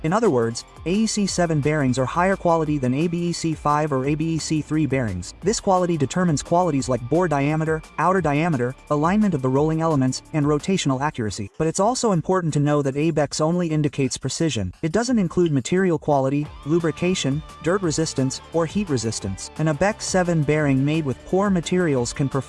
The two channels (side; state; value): both; identical; correlation 1.00